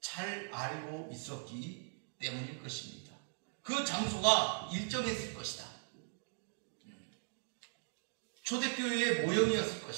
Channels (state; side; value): silent; left; digital silence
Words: 알고 있었기 때문일 것입니다. 그 장소가 일정했을 것이다. 초대교회의 모형이었을